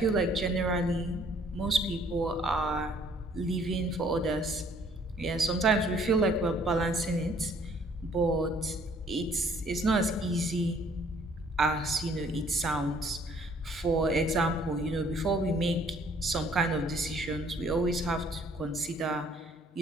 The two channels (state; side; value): normal; both; correlation 0.60